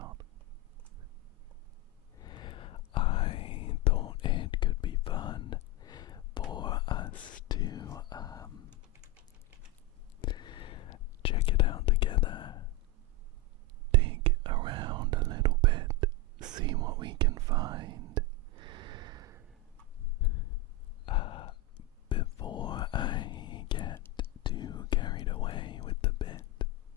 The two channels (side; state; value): both; normal; correlation 0.10